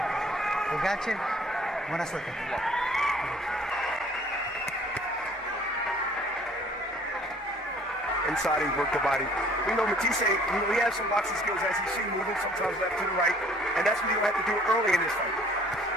We got you. Buena suerte. Inside, he worked the body. We know Matthysse, he has some boxing skills as you see moving, sometimes left to the right, and that's what you're going to have to do early in this fight.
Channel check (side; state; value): both; normal; correlation 0.55